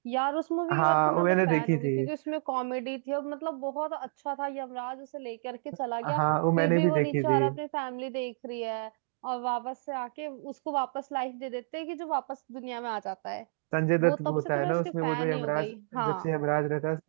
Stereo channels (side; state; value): left; silent; digital silence